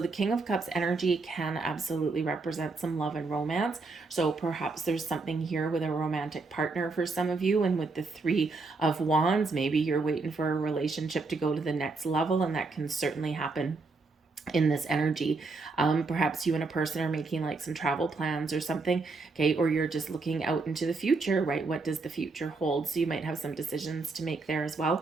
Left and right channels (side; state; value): left; quieter; 3.8 dB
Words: King of Cups energy can absolutely represent some love and romance. So perhaps there's something here with a romantic partner for some of you. And with the Three of Wands, maybe you're waiting for a relationship to go to the next level, and that can certainly happen in this energy. Perhaps you and a person are making like some travel plans or something, okay, or you're just looking out into the future, right? What does the future hold? So you might have some decisions to make there as